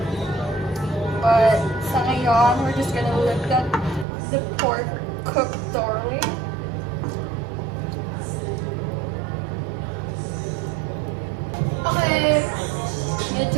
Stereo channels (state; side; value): drops out; left; at 4.0 s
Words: but sa ngayon we're just gonna let the pork cook thoroughly. Okay,